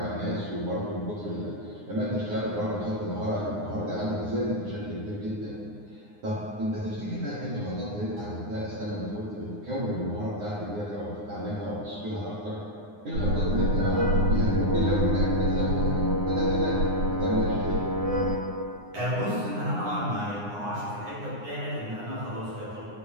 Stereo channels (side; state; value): left; late; 9.7 ms